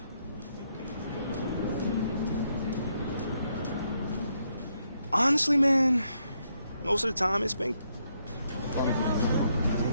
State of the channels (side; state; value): both; inverted; correlation -0.77